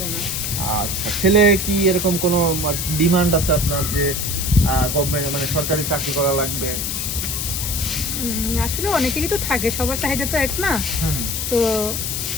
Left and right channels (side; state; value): left; noise; hiss, 2 dB below the sound